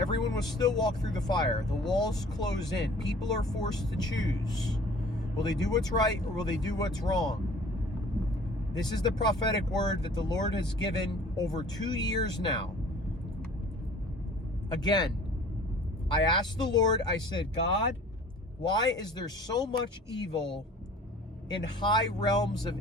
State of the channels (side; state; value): both; normal; correlation 0.49